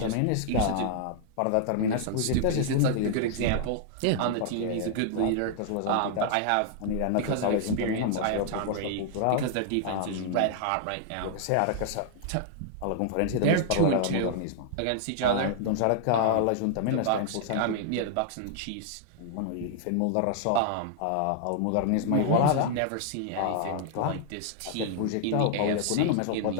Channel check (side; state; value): both; different; correlation -0.01